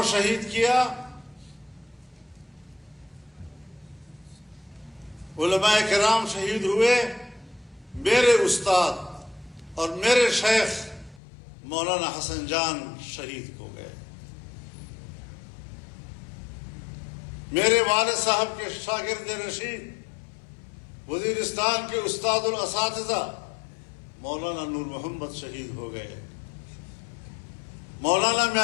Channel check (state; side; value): drops out; right; at 11.2 s